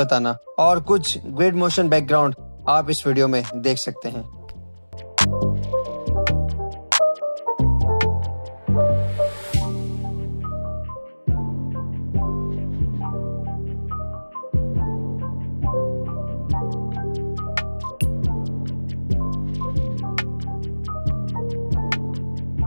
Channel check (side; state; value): both; inverted; correlation -1.00